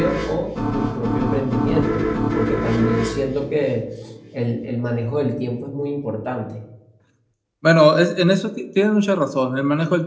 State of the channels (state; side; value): identical; both; correlation 1.00